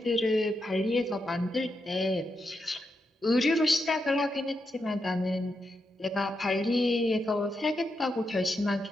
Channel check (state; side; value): normal; both; correlation 0.85